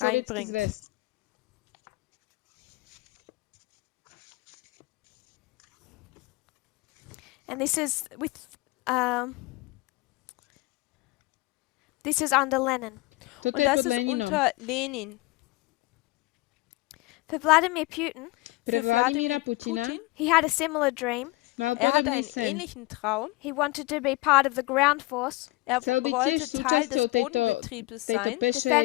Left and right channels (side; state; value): right; quieter; 21.4 dB